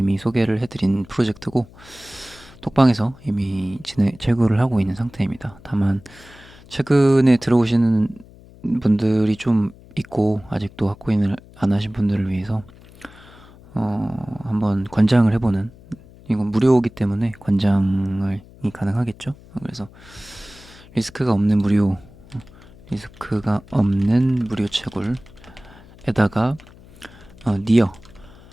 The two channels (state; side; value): noise; left; hum, 22 dB below the sound